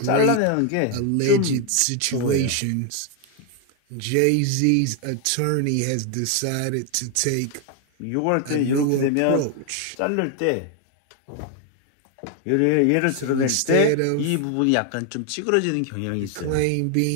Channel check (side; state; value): both; different; correlation 0.01